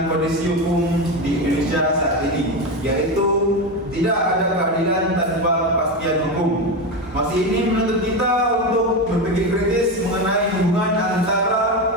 kondisi hukum di Indonesia saat ini, yaitu tidak ada keadilan tanpa kepastian hukum. Masih ini menuntut kita untuk berpikir kritis mengenai hubungan antara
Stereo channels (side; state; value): both; normal; correlation 0.16